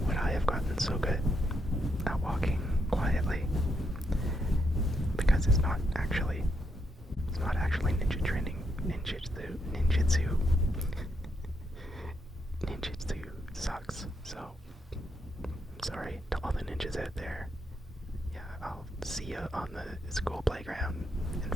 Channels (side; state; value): both; normal; correlation 0.79